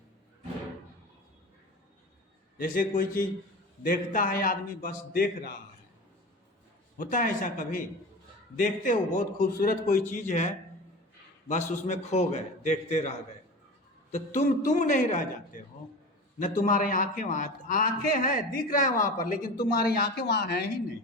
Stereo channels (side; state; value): both; normal; correlation 0.32